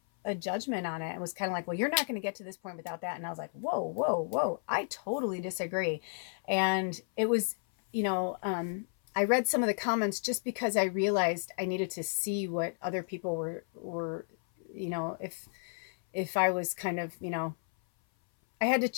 a judgment on it. It was kind of like, well, you're not going to get to this point without that. And I was like, whoa, whoa, whoa, I totally disagree. And it was, I read some of the comments just because I realized I needed to see what other people were, if I was kind of, I had to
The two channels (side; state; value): right; silent; 56 dB below the other